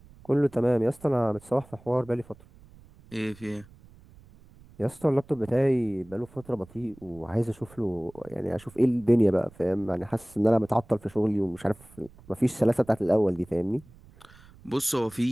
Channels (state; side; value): noise; right; rumble, 24 dB below the sound